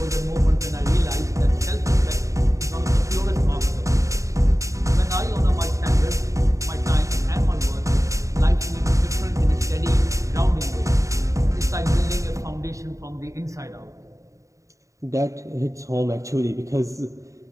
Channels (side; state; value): left; late; 0.16 ms